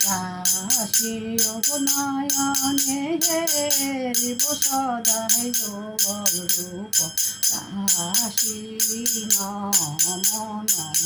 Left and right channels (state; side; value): identical; both; correlation 1.00